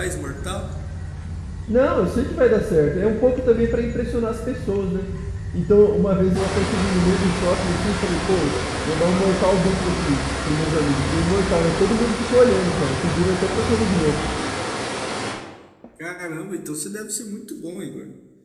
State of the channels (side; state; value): both; identical; correlation 1.00